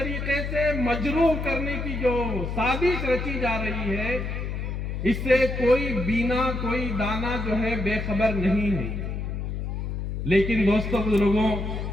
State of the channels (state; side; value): noise; left; hum, 4 dB below the sound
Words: سے مجروح کرنے کی جو سازش رچی جا رہی ہے، اس سے کوئی بینا، کوئی دانا جو ہے بے خبر نہیں ہے۔ لیکن دوستو، بزرگوں،